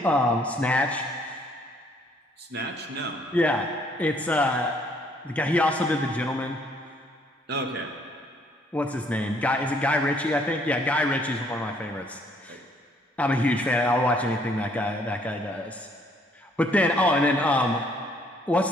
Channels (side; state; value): both; normal; correlation 0.65